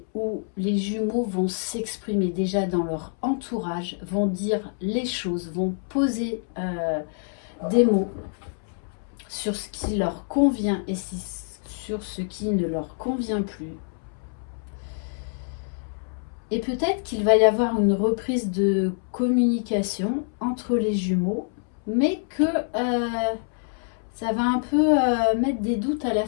où les jumeaux vont s'exprimer déjà dans leur entourage, vont dire les choses, vont poser des mots sur ce qui leur convient et sur ce qui ne leur convient plus. Et peut-être qu'il va y avoir une reprise de communication entre les jumeaux, mais que ça va un peu mettre des doutes à la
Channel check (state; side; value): silent; right; 61 dB below the other